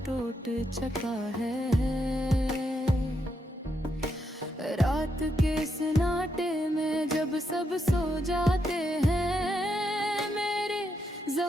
टूट चुका है। रात के सन्नाटे में जब सब सो जाते हैं, मेरे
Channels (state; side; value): normal; both; correlation 0.80